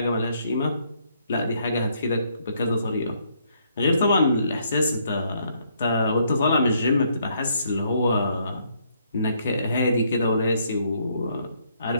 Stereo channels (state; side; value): inverted; both; correlation -0.70